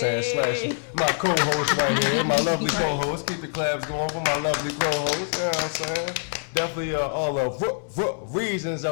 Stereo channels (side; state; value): right; silent; 62 dB below the other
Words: Slash my co-host right here, my lovely co-host. Keep the claps going for my lovely co-host. You know what I'm saying? Definitely all of reasons